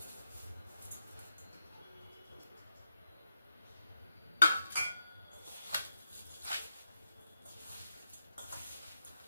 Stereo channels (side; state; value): both; inverted; correlation -0.85